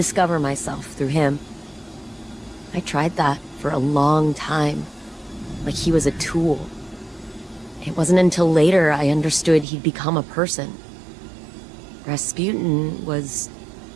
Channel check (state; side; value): drops out; left; at 9.7 s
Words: myself through him. I tried that for a long time, like he was a tool. It wasn't until later I understood he'd become a person. Rasputin was